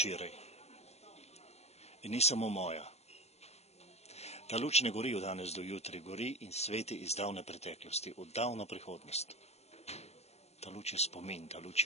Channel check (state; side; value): late; right; 0.31 ms